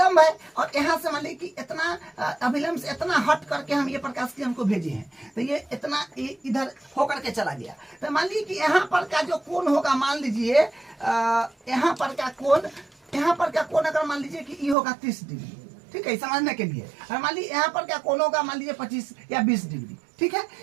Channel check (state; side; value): drops out; left; at 14.8 s